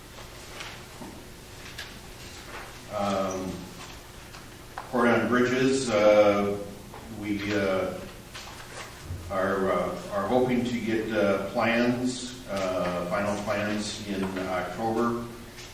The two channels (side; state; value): both; identical; correlation 1.00